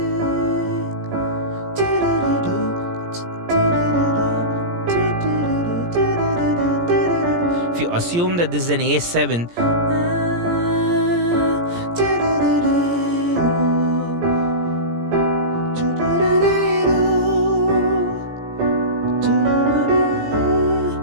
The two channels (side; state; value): left; late; 17 ms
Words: If you assume that this is an A7,